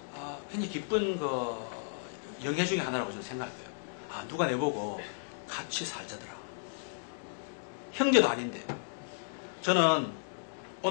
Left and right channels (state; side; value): silent; right; digital silence